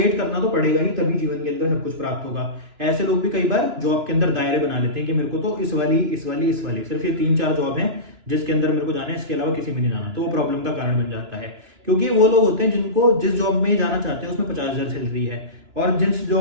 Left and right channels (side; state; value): left; late; 2.9 ms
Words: करना तो पड़ेगा ही, तभी जीवन के अंदर सब कुछ प्राप्त होगा। ऐसे लोग भी कई बार जॉब के अंदर दायरे बना लेते हैं कि मेरे को तो इस वाली सिर्फ ये 3-4 जॉब है जिसके अंदर मेरे को जाना है, इसके अलावा किसी में नहीं जाना। तो वो प्रॉब्लम का कारण बन जाता है, क्योंकि वो लोग होते हैं जिनको जिस जॉब में जाना चाहते हैं उसमें 50,000 सैलरी है और जिस